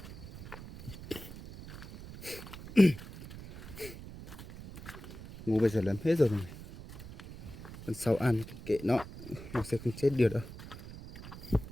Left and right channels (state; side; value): noise; right; rumble, 13 dB below the sound